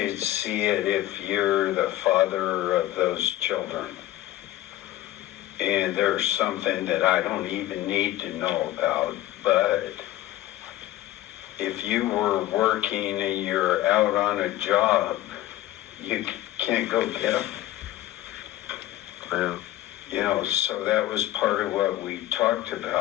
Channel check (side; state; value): right; quieter; 14.7 dB